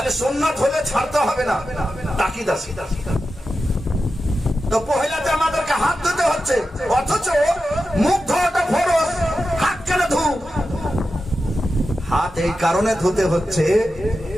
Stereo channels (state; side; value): normal; both; correlation 0.91